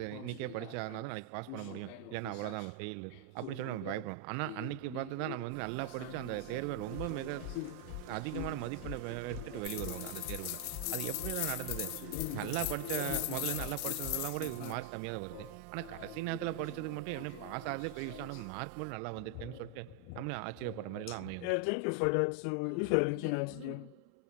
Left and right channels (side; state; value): both; different; correlation 0.00